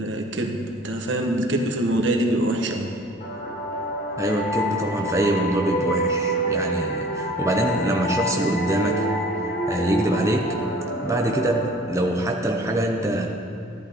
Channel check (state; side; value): normal; both; correlation 0.49